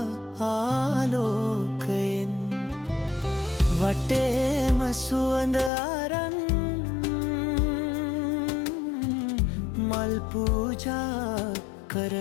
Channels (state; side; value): drops out; right; at 5.7 s